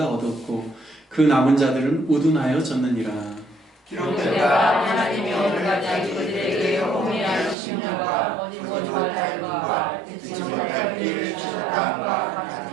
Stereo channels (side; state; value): left; drops out; at 7.6 s